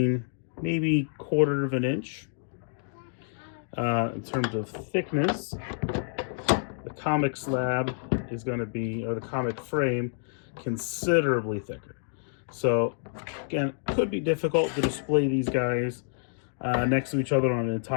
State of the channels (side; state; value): right; silent; digital silence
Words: maybe 1/4 of an inch. In terms of thickness, the Komiq slab is going to be, or the Komiq frame, considerably thicker. So again, it could be difficult to display these guys next to each other on an